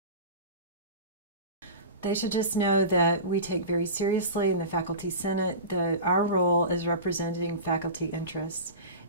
They should just know that we take very seriously in the Faculty Senate that our role is representing faculty interests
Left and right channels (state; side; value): inverted; both; correlation -0.31